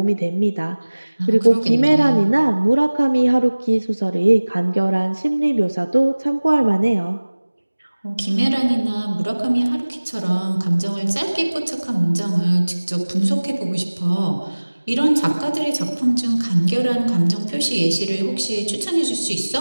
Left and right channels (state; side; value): inverted; both; correlation -1.00